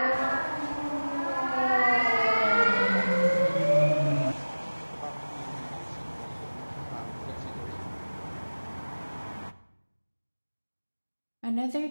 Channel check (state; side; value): inverted; both; correlation -1.00